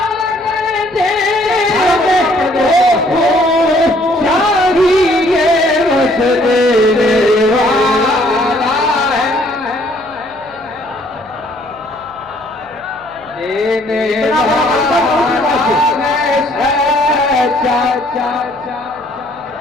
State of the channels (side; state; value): left; noise; hum, 27 dB below the sound